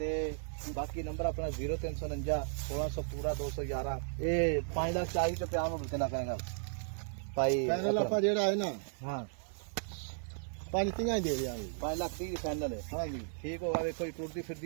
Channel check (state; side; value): silent; left; 54 dB below the other